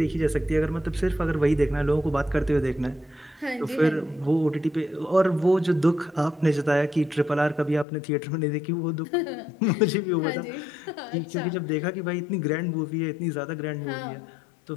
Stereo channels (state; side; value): drops out; right; at 7.9 s